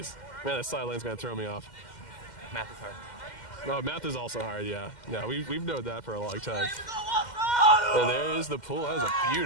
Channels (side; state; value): right; late; 2.1 ms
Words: Man, that sideline's going to throw me off. Math is hard. Oh, math is also hard, yeah. Yeah, we've known that for a long time. And there is the pool. That is a